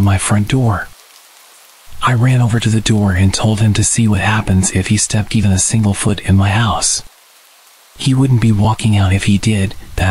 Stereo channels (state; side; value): identical; both; correlation 1.00